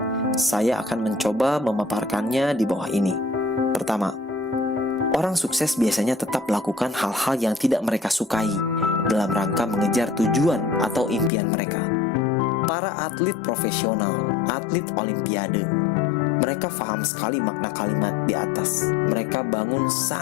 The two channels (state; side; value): drops out; right; at 11.3 s